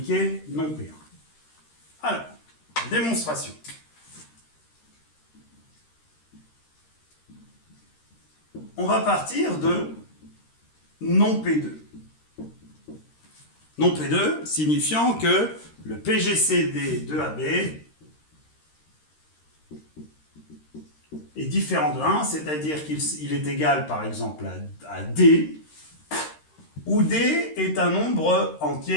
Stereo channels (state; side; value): late; right; 13 ms